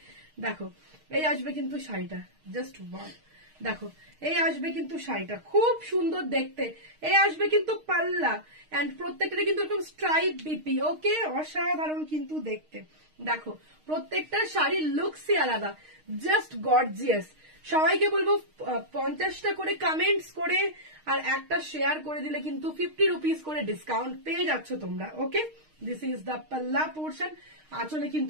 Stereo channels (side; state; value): left; late; 6.5 ms